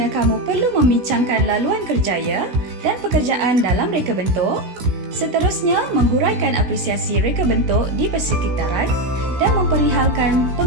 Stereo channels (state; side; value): late; left; 16 ms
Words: kamu perlu membincangkan laluan kerjaya dan pekerjaan dalam reka bentuk, seterusnya menghuraikan apresiasi reka bentuk di persekitaran dan memperihalkan